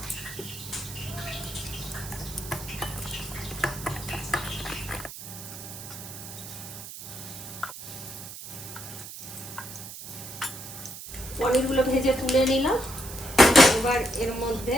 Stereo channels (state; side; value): noise; right; hiss, 11 dB below the sound